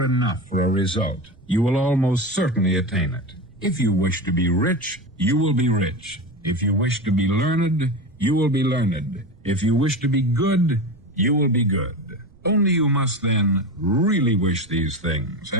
enough for a result, you will almost certainly attain it. If you wish to be rich, you will be rich. If you wish to be learned, you will be learned. If you wish to be good, you will be good. Only you must then really wish these things,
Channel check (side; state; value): right; noise; rumble, 26 dB below the sound